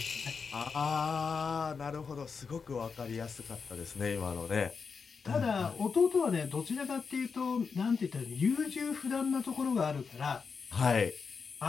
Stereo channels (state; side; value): quieter; right; 5.5 dB